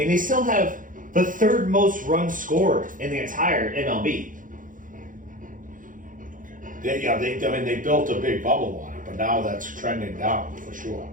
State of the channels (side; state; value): left; late; 0.39 ms